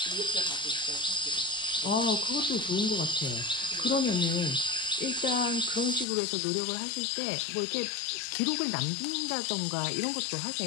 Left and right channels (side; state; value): right; drops out; at 6.1 s